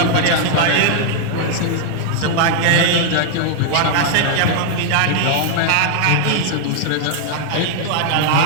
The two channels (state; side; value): different; both; correlation 0.00